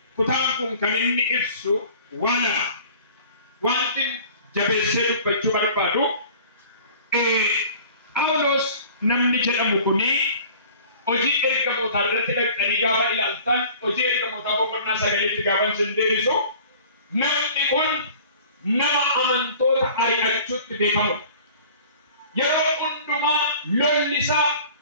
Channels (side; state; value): both; inverted; correlation -0.47